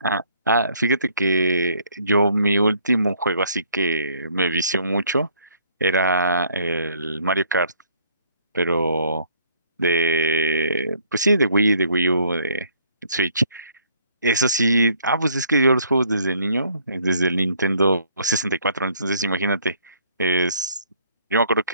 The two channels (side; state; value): both; inverted; correlation -0.63